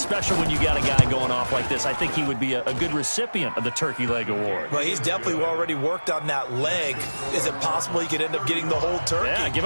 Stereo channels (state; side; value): inverted; both; correlation -1.00